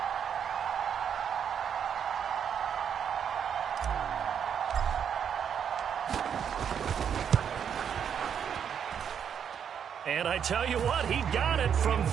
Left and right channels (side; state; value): left; quieter; 8.0 dB